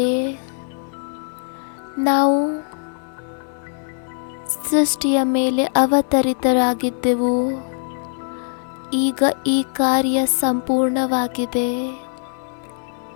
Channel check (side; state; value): right; silent; digital silence